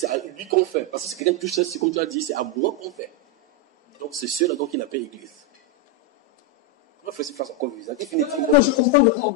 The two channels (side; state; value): both; normal; correlation 0.03